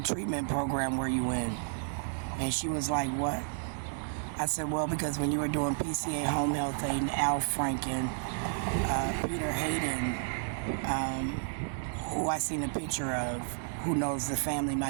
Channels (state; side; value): silent; left; digital silence